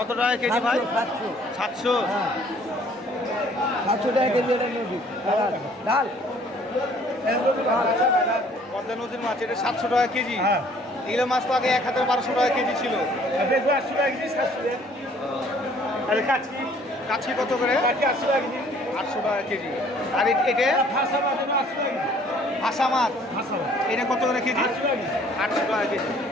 টাকা কেজি ভাই? 700 700। 700 টাকা কেজি এটা নদী ডাল। পদ্মা নদীর মাছ এটা 700 টাকা কেজি। হ্যাঁ। এগুলো মাছ তো আগে 1000-1200 টাকা কেজি ছিল। দেখবো 80 টাকা কেজি, 700 টাকা। আর কাচকি কাছি কত করে? 800 টাকা কেজি। 800 টাকা কেজি। আর এটা ফাঁসা মাছ 800 টাকা কেজি। ভাষা মাছ ফাঁসা মাছ এটা কত করে কেজি? 800 টাকা কেজি। 800 টাকা কেজি।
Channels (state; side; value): normal; both; correlation 0.57